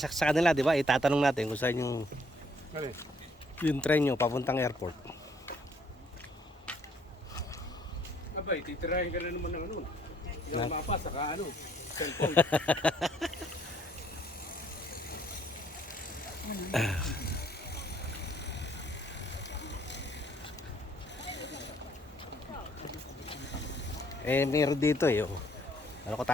sa kanila, di ba? Itatanong natin kung saan yung train nyo papuntang airport. Abay, titirahin ka na naman ng ano. Yung mapa, saka ano, cellphone. Eh, meron dito eh. Oh. Ano ko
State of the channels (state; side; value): normal; both; correlation 0.65